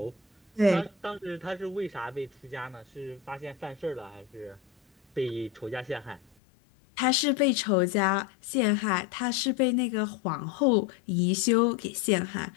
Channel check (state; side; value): drops out; right; at 6.4 s